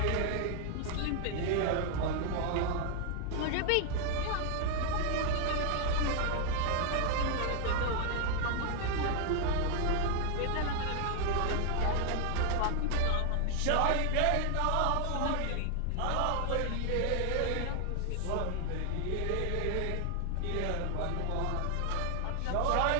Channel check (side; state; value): both; different; correlation 0.00